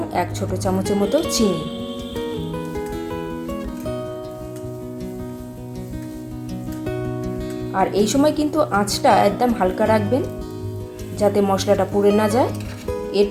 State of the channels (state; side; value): identical; both; correlation 1.00